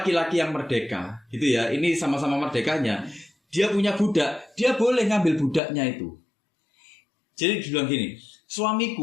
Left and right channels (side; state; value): right; drops out; at 5.6 s